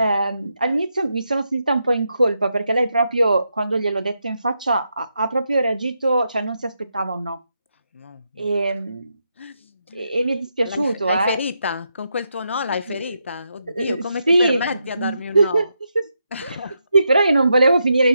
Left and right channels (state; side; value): inverted; both; correlation -0.83